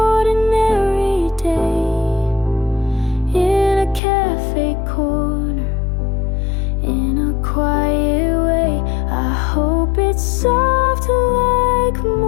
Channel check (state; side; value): drops out; right; at 4.0 s